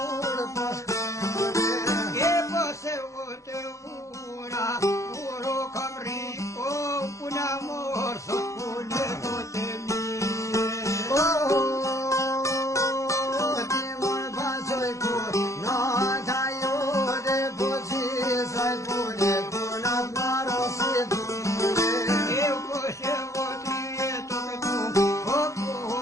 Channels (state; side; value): late; right; 0.15 ms